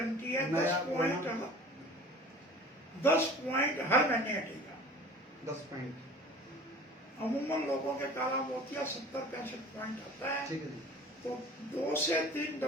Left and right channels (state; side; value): normal; both; correlation 0.43